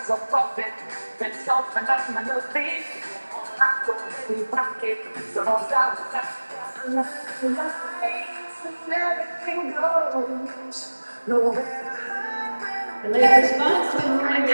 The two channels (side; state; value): both; inverted; correlation -1.00